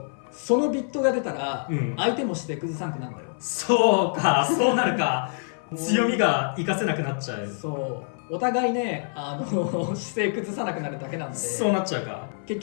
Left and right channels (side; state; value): right; silent; 57 dB below the other